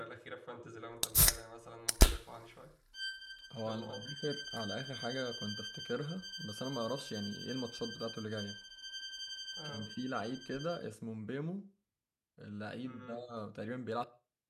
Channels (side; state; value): both; identical; correlation 1.00